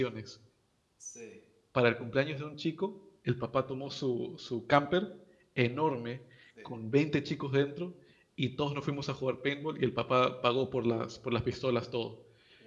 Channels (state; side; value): identical; both; correlation 1.00